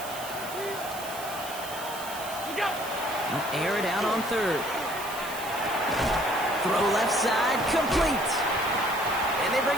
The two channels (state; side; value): noise; right; hiss, 12 dB below the sound